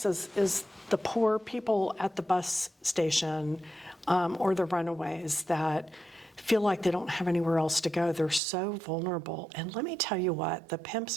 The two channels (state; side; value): drops out; left; at 8.4 s